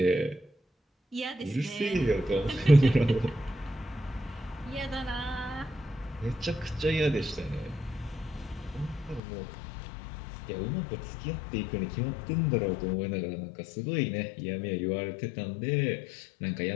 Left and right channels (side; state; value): right; drops out; at 9.2 s